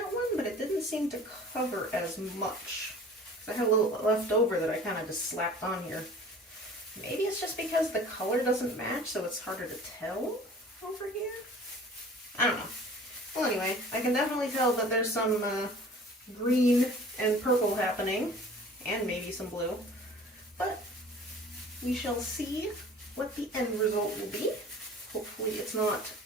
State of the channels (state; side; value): normal; both; correlation 0.46